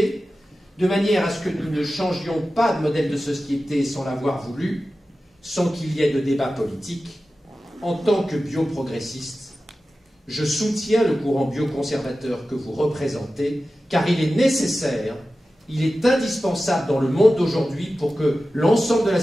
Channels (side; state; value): both; normal; correlation 0.94